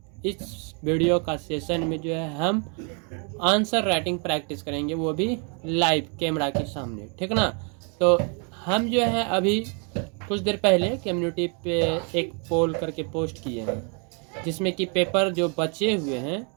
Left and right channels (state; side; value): quieter; left; 37.4 dB